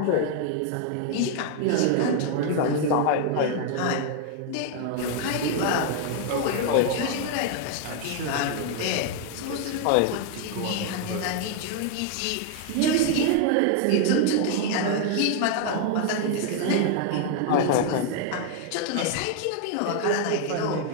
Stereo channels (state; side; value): different; both; correlation 0.00